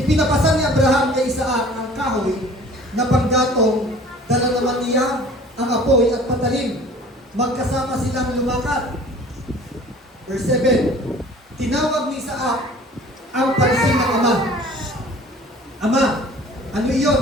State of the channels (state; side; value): normal; both; correlation 0.48